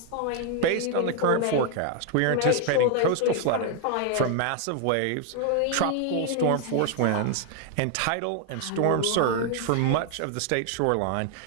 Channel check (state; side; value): different; both; correlation 0.00